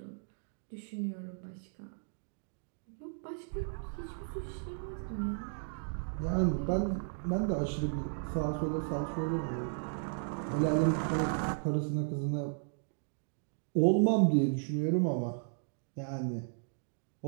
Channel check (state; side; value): silent; left; digital silence